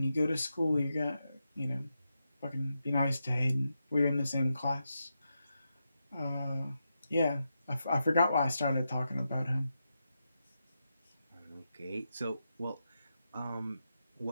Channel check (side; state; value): both; inverted; correlation -0.87